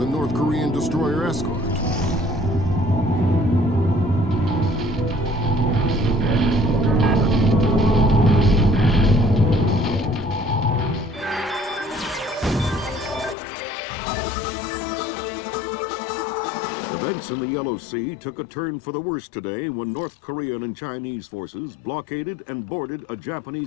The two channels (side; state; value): right; drops out; at 13.4 s